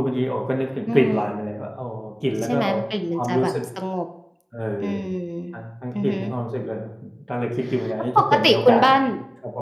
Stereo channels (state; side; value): identical; both; correlation 1.00